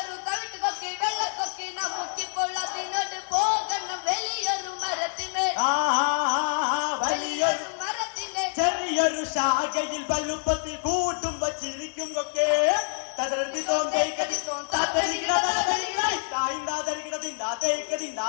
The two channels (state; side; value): silent; right; digital silence